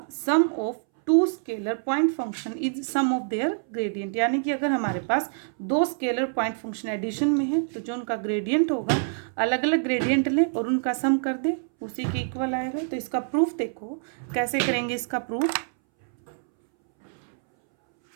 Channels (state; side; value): silent; left; 61 dB below the other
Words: sum of two scalar point function is sum of their gradient, यानी कि अगर हमारे पास दो स्केलर पॉइंट फंक्शन एडिशन में है तो जो उनका ग्रेडियंट होगा अलग अलग ग्रेडियंट लें और उनका सम कर दे, उसी के इक्वल आएगा। तो इसका प्रूफ देखो कैसे करेंगे। इसका proof,